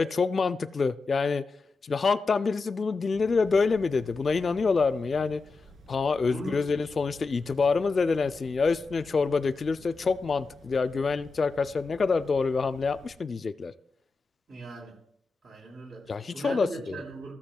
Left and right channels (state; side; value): quieter; right; 4.2 dB